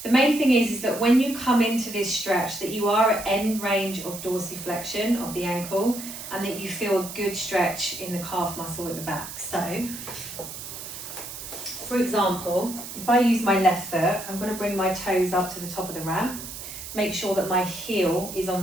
The main thing is that when you come into this stretch, that you are at end range of dorsiflexion of the ankle and that you feel a good stretch in the calf muscle at the back. So, for example, if I use my left foot, I'm going to bring my toes up to the top of the ramp. Make sure that my heel is on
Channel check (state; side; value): noise; right; hiss, 10 dB below the sound